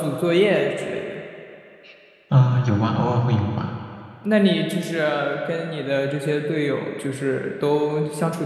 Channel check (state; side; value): identical; both; correlation 1.00